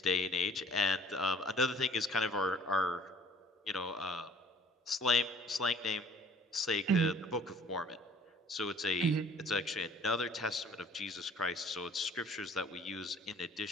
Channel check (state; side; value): normal; both; correlation 0.54